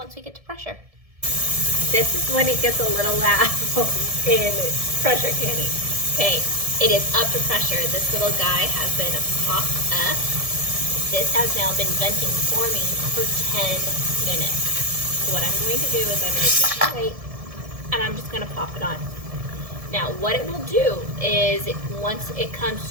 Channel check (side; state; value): left; late; 1.7 ms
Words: we get to pressure. This is when it gets a little loud in pressure canning. Okay, it is up to pressure. This little guy has been popped up. This has now been venting for me for 10 minutes. So what I'm going to do is I'm going to take my weight and I'm just going to pop it on. Now what it will do is once it